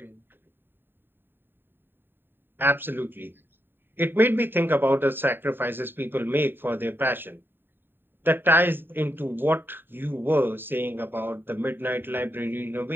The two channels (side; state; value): left; late; 0.098 ms